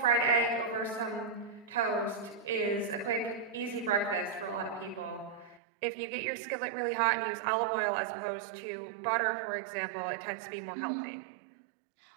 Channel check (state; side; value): drops out; left; at 5.6 s